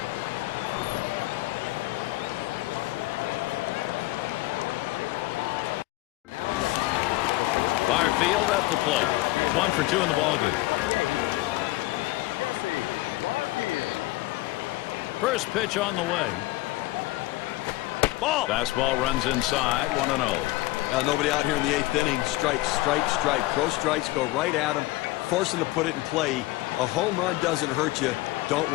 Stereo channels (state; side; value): quieter; right; 19.0 dB